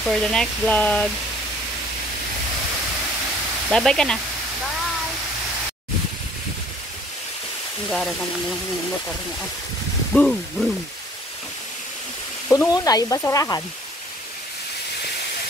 the next vlog. Bye ka na. Ang gara naman yung motor niya. Boom, boom. Puno na yung basurahan.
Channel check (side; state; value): both; normal; correlation 0.55